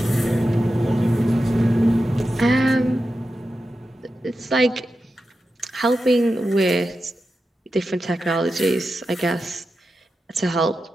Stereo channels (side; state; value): both; normal; correlation 0.91